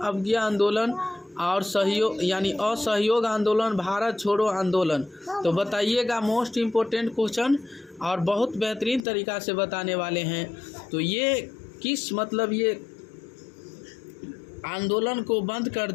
आंदोलन और सहयोग यानी असहयोग आंदोलन, भारत छोड़ो आंदोलन। तो बताइएगा मोस्ट इम्पोर्टेंट क्वेश्चन और बहुत बेहतरीन तरीक़ा से बताने वाले हैं। तो ये किस मतलब ये आंदोलन को बंद कर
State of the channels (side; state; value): right; drops out; at 9.0 s